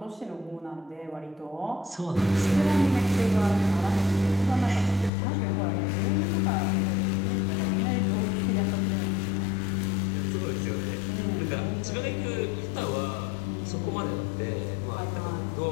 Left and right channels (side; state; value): right; drops out; at 5.1 s